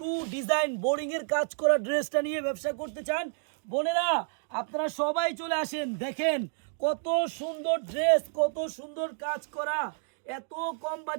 ডিজাইন বোরিংয়ের কাজ করা ড্রেসটা নিয়ে ব্যবসা করতে চান, বোনেরা আপনারা সবাই চলে আসেন। দেখেন কত সুন্দর ড্রেস, কত সুন্দর কাজ করা, এত কম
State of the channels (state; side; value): silent; left; digital silence